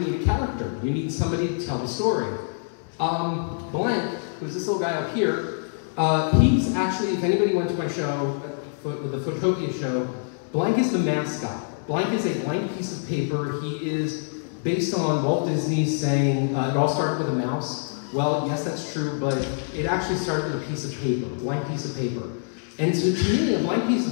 need a character. You need somebody to tell the story. Blank, who's this little guy up here, he's actually, if anybody went to my show, the Photopia show, Blank is the mascot. Blank is a blank piece of paper. He is based on Walt Disney saying, it all started with a mouse. Well, yes, that's true, but it actually started with a piece of paper, a blank piece of paper. And so to me, a blank piece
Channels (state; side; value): silent; right; 62 dB below the other